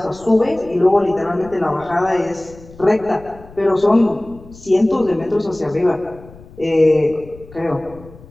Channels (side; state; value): left; noise; rumble, 21 dB below the sound